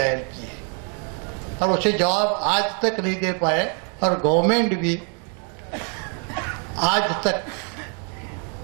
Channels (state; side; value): quieter; left; 39.3 dB